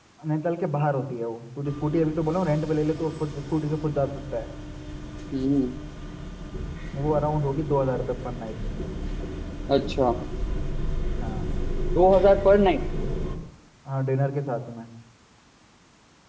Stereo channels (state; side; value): identical; both; correlation 1.00